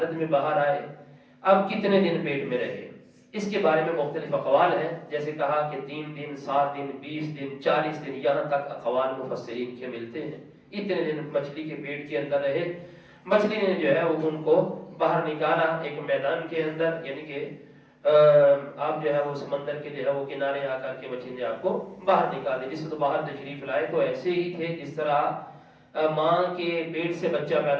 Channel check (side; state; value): both; identical; correlation 1.00